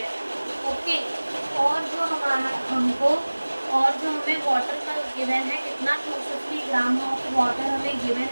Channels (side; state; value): both; inverted; correlation -1.00